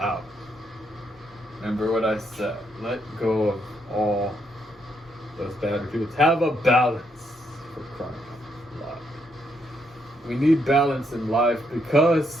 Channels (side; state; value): both; normal; correlation 0.76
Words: Remember what I said. Let go of all those bad attitudes. Have a balance, for crying out loud. We need balance in life